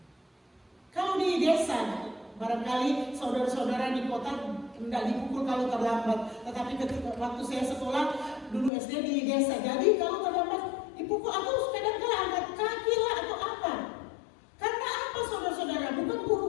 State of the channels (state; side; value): drops out; right; at 8.7 s